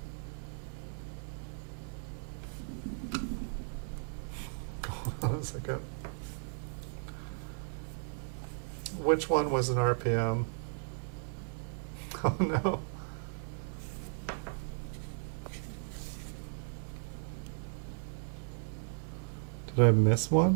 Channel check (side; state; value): left; silent; digital silence